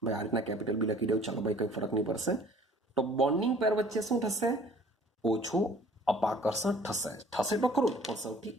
ભાઈ આ રીતના કેપિટલ બી લખી દઉં, ચાલો ભાઈ કંઈ ફરક નહીં પડશે. તો બોન્ડિંગ પેર વચ્ચે શું થશે? ઓછું અપાકર્ષણ થશે તો ખરું, પણ સૌથી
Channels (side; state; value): both; normal; correlation 0.52